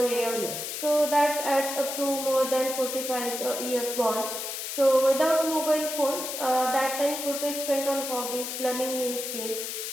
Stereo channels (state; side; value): noise; left; hiss, 5 dB below the sound